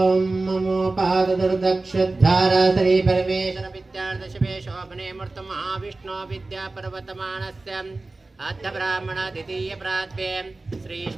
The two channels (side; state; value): left; quieter; 3.2 dB